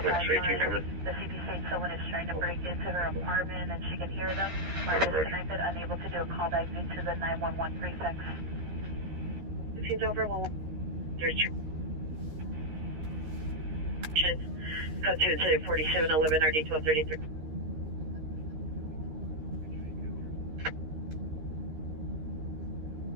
coming. The CP states someone is trying to break into her apartment and she can hear them. Are disconnected, unable to do a callback due to the 911 prefix. This is over. Well, there's code 2 4711 RD 1233.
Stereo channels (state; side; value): late; left; 13 ms